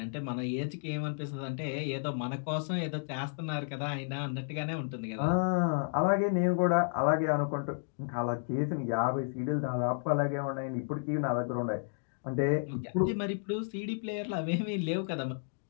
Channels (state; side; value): silent; right; digital silence